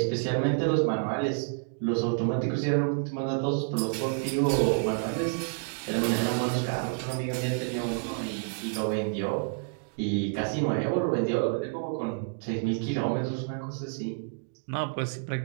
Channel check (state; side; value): silent; left; digital silence